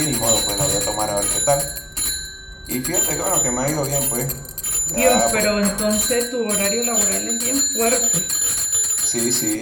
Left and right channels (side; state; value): both; identical; correlation 1.00